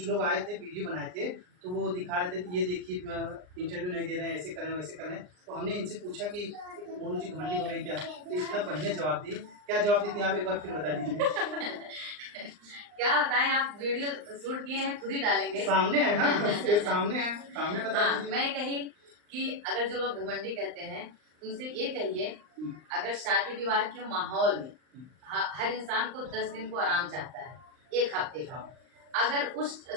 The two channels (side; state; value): left; late; 39 ms